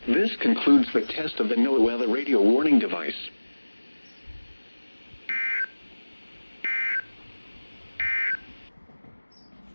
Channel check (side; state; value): both; inverted; correlation -1.00